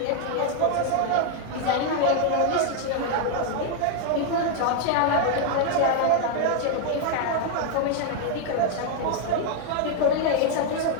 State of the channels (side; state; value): both; different; correlation 0.00